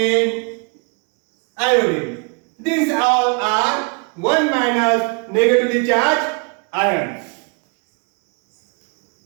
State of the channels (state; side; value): quieter; left; 34.8 dB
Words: iodine. These all are 1 minus negatively charged ions.